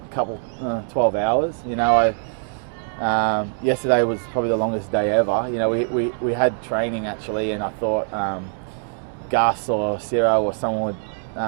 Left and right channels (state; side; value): silent; left; 63 dB below the other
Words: couple 12 hours. Yesterday was probably the longest day ever. We had training actually, and I thought Gus or Ciro or someone